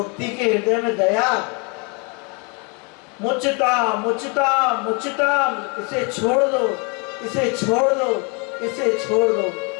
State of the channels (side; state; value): right; quieter; 32.8 dB